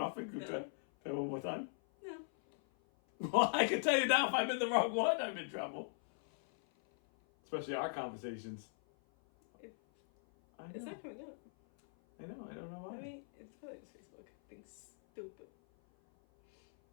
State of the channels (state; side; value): silent; right; 52 dB below the other